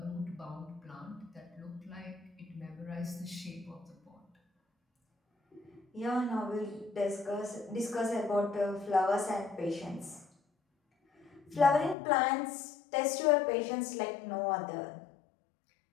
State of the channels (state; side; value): drops out; right; at 12.0 s